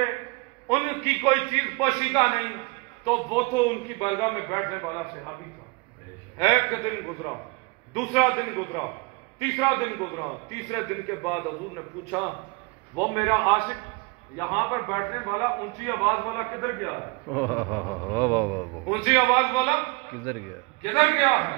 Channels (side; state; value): left; quieter; 27.8 dB